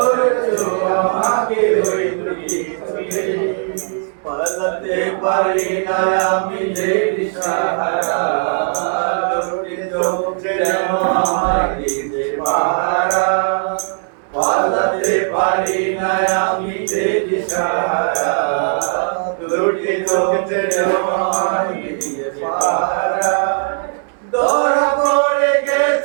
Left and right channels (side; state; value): left; silent; 68 dB below the other